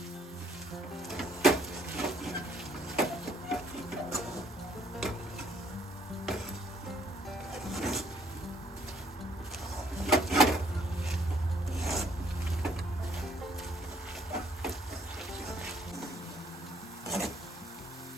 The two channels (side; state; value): both; normal; correlation 0.63